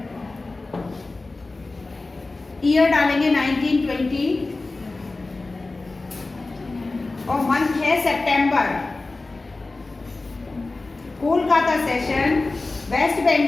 ईयर डालेंगे 1920 और मंथ है सितंबर। कोलकाता सेशन वेस्ट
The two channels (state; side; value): quieter; right; 3.3 dB